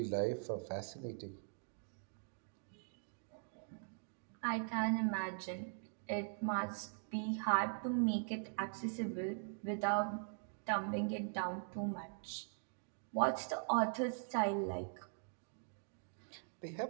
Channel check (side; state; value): left; silent; digital silence